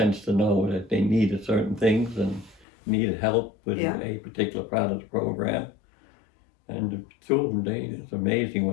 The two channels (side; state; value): right; drops out; at 2.7 s